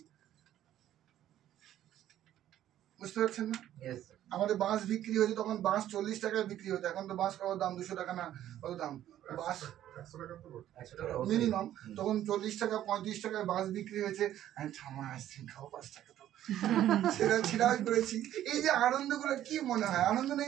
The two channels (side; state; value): left; quieter; 12.1 dB